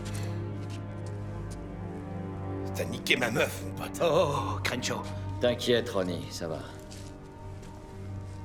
T'as niqué ma meuf, mon pote. Oh, Crenshaw. T'inquiète, Ronnie, ça va.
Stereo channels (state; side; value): identical; both; correlation 1.00